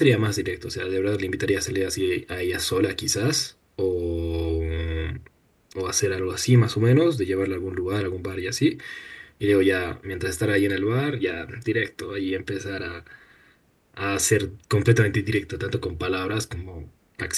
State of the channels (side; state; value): both; identical; correlation 1.00